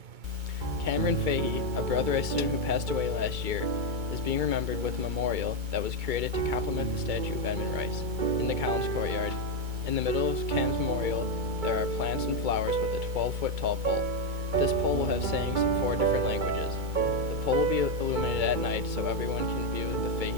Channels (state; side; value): late; left; 2.2 ms